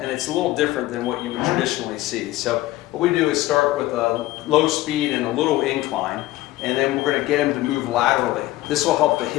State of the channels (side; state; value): right; quieter; 16.9 dB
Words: And it's a little different than what you would traditionally see. So what we do is start with a low speed and a little incline, and then we're going to get him to move laterally. This will help the